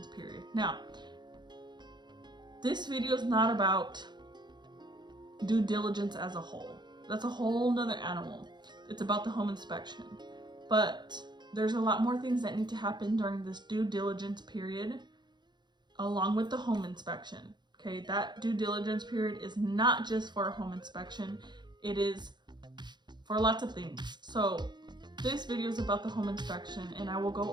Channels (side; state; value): left; late; 0.21 ms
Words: period. Now, this video is not about due diligence as a whole. That's a whole nother animal. It's about the home inspection. But there's a lot more things that need to happen during this due diligence period along with the home inspection. Okay, that due diligence period is not just for a home inspection. It is for lots of things. So this video is about the home inspection, and I will